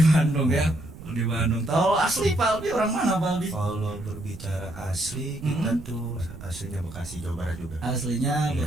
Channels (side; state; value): right; noise; rumble, 15 dB below the sound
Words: Bandung ya. Di Bandung. Tahu asli Pak Albi orang mana Pak Albi? Kalau berbicara asli, kita tuh aslinya Bekasi, Jawa Barat juga. Aslinya